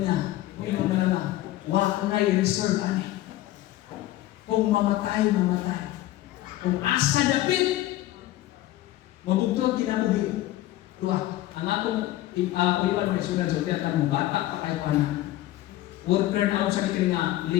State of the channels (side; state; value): right; quieter; 15.3 dB